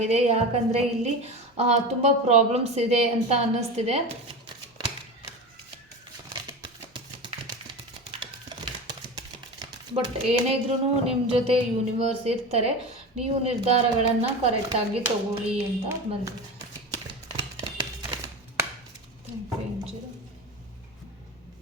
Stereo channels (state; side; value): normal; both; correlation 0.27